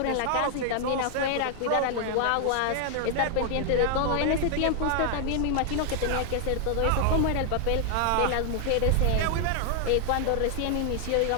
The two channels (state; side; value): different; both; correlation 0.00